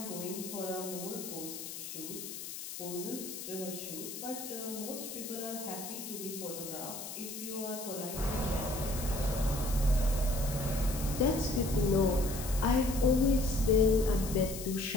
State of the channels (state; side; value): noise; left; hiss, 9 dB below the sound